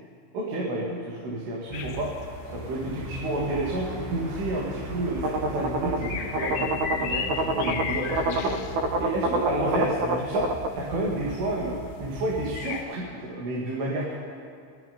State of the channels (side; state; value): left; late; 15 ms